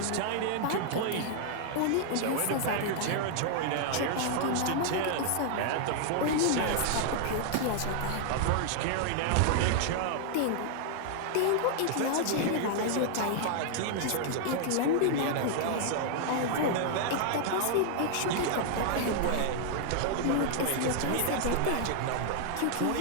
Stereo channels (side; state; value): both; different; correlation 0.00